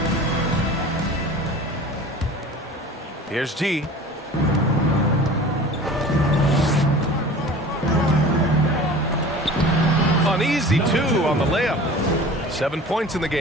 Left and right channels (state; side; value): normal; both; correlation 0.40